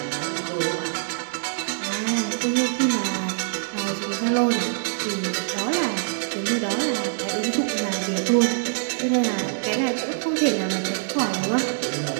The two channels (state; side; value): silent; left; 62 dB below the other